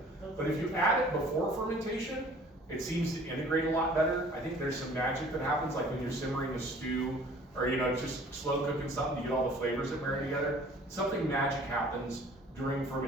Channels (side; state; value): both; normal; correlation 0.51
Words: But if you add it before fermentation, it seems to integrate a lot better. I think there's some magic that happens, like when you're simmering a stew, or just slow cooking something to get all the flavors that marry together. Something magic happens during